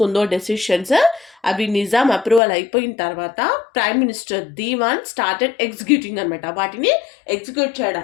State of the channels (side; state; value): right; drops out; at 2.4 s